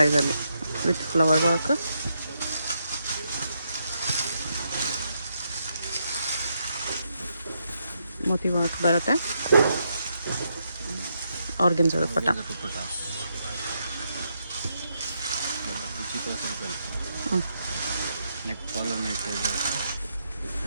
ವಿತ್ ಫ್ಲವರ್ ವರ್ಕ್. ಮೋತಿ ವರ್ಕ್ ಬರುತ್ತೆ. Organza dupatta. Neck collar neck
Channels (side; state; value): both; inverted; correlation -0.79